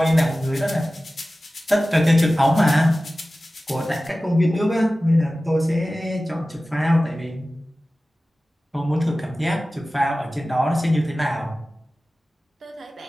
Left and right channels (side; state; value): both; normal; correlation 0.96